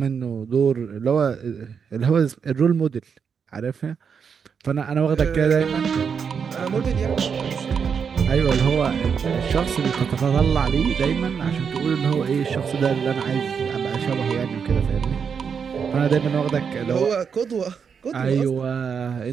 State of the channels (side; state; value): left; quieter; 6.6 dB